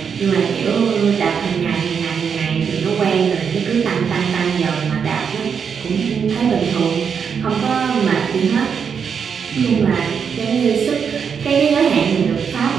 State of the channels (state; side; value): quieter; left; 6.7 dB